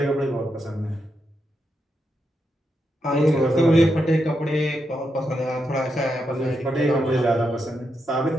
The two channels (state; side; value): normal; both; correlation 0.84